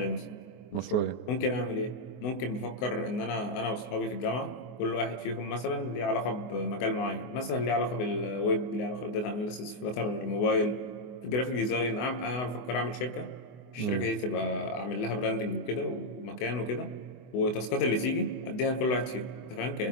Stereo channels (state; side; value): late; right; 24 ms